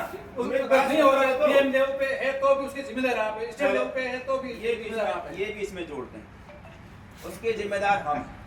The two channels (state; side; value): identical; both; correlation 1.00